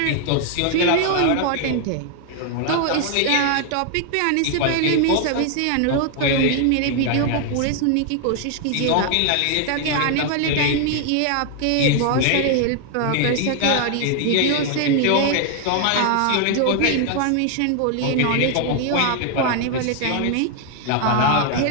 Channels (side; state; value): both; different; correlation 0.00